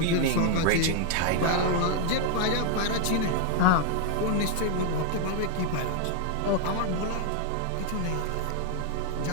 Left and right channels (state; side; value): different; both; correlation 0.00